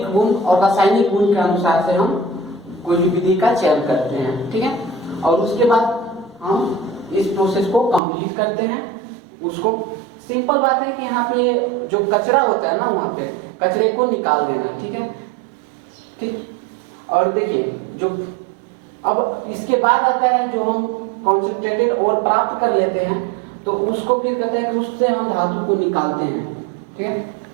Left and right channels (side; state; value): left; drops out; at 8.0 s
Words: गुण और रासायनिक गुण के अनुसार से हम कोई भी विधि का चयन करते हैं, ठीक है। और उसके बाद हम इस प्रोसेस को कंप्लीट करते हैं। उसको सिंपल बात है कि यहाँ पे जो कचरा होता है ना, वहां पे कचरे को निकाल देना, ठीक है, ठीक। और देखिए जो अब इसके बाद आता है जो हम कॉन्सेंट्रेटेड और प्राप्त कर लेते हैं, तो उसको फिर कहते हैं कि उससे हम धातु को निकालते हैं, ठीक है।